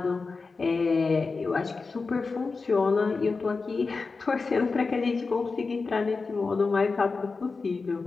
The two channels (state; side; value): quieter; right; 4.3 dB